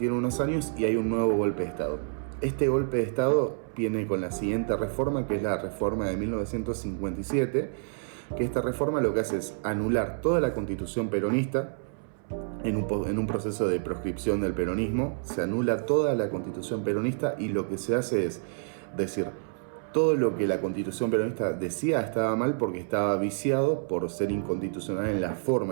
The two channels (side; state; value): left; silent; 59 dB below the other